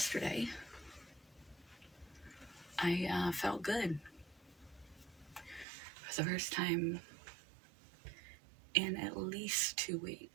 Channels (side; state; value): left; drops out; at 5.7 s